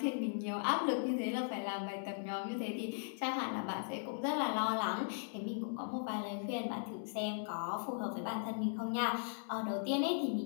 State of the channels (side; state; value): right; silent; 52 dB below the other